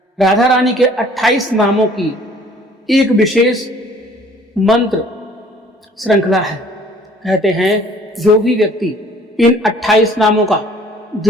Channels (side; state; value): both; normal; correlation 0.55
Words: राधा रानी के 28 नामों की एक विशेष मंत्र श्रृंखला है। कहते हैं जो भी व्यक्ति इन 28 नामों का